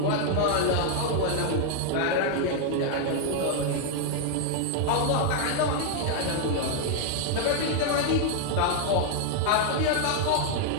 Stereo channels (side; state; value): both; different; correlation 0.00